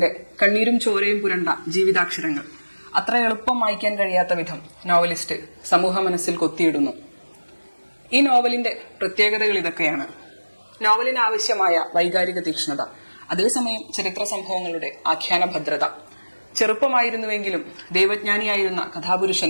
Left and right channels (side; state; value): both; inverted; correlation -1.00